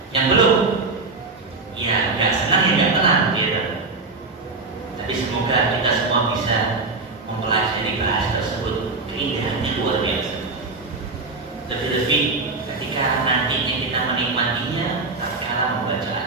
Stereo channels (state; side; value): quieter; left; 3.8 dB